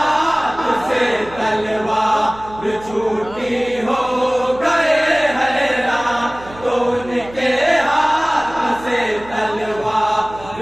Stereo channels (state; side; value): noise; right; hum, 18 dB below the sound